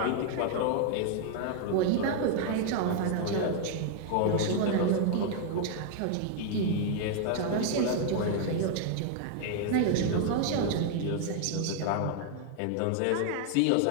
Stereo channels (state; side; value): different; both; correlation 0.00